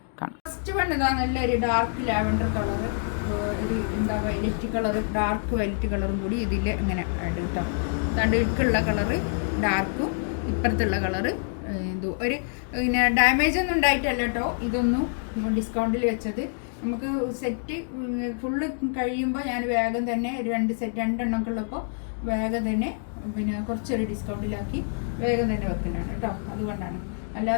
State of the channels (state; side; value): silent; right; digital silence